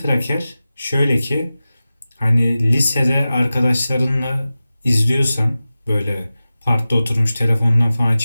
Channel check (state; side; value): inverted; both; correlation -0.95